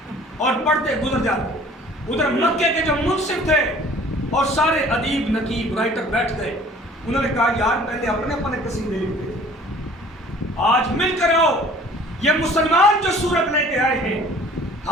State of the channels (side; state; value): both; normal; correlation 0.51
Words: اور پڑھتے گزر جاتے۔ ادھر مکے کے جو منصف تھے اور سارے ادیب، نقیب، رائٹر بیٹھ گئے، انہوں نے کہا یار پہلے اپنے اپنے قصیدے لکھتے تھے، آج مل کر آؤ، یہ مسلمان جو سورت لے کے آئے ہیں